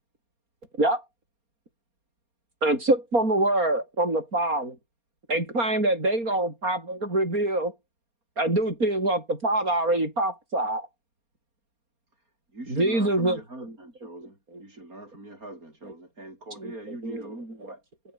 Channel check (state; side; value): late; left; 4.3 ms